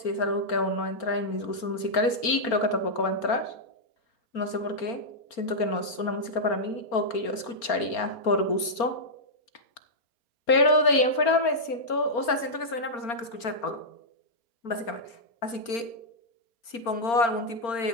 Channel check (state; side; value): late; right; 4.3 ms